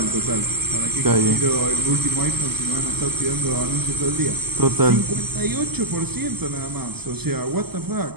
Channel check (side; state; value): left; late; 0.97 ms